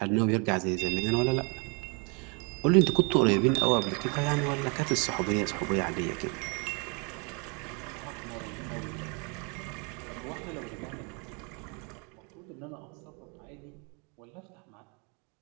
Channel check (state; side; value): quieter; left; 33.5 dB